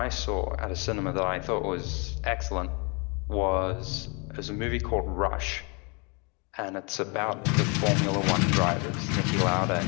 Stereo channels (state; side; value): quieter; right; 31.7 dB